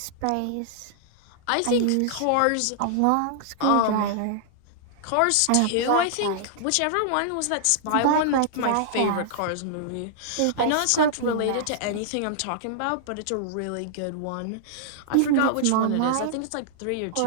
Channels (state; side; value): different; both; correlation -0.01